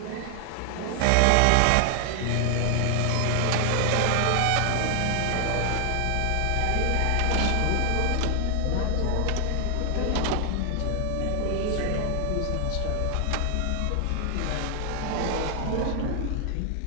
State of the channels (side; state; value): both; different; correlation 0.00